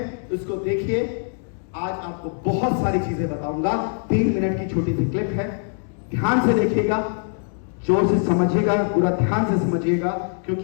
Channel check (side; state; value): right; silent; 64 dB below the other